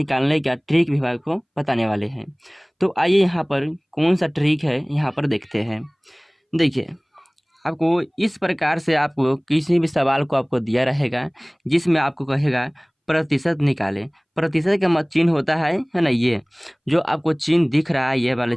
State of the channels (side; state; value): both; identical; correlation 1.00